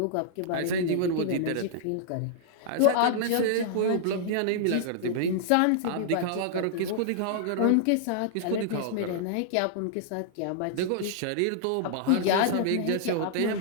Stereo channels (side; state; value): both; different; correlation -0.01